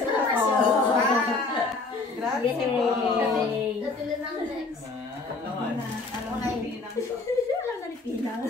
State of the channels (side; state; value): right; quieter; 3.7 dB